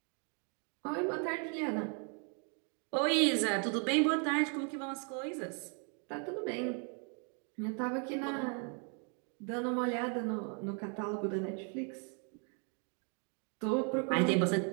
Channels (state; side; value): quieter; left; 39.8 dB